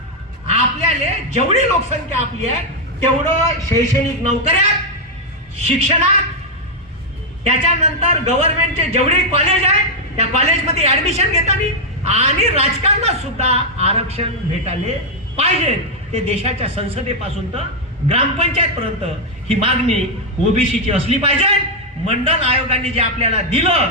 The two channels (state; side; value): normal; both; correlation -0.01